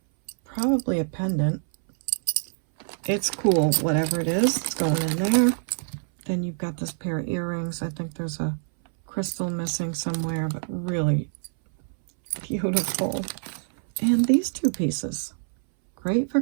Probably a pendant. It's cool, whatever it is, it's going in there. Then you've got this pair of earrings. I think there's a crystal missing somewhere, but really beautiful. And these two pieces, great for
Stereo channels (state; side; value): silent; left; 61 dB below the other